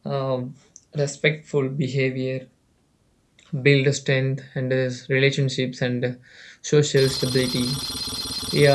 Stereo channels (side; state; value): both; identical; correlation 1.00